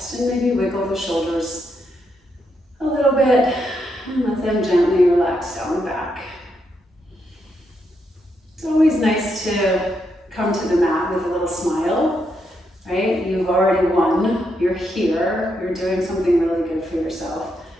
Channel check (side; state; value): both; normal; correlation 0.80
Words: and maybe wiggle the shoulders a little bit and let them gently relax down the back. It's always nice to come to the mat with a little smile, right? You've already won, you're here, you're doing something really good for yourself.